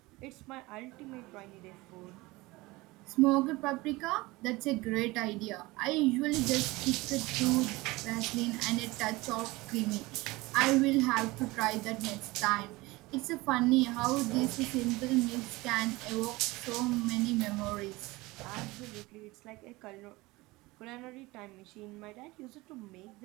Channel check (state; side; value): quieter; left; 21.4 dB